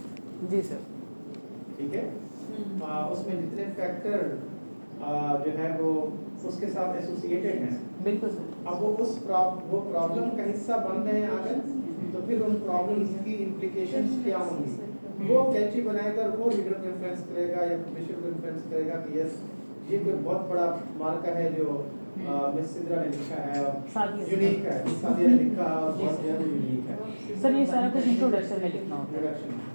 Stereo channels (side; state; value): both; inverted; correlation -1.00